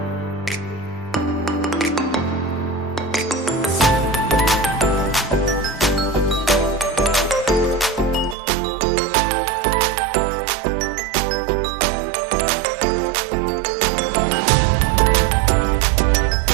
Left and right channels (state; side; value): drops out; left; at 8.3 s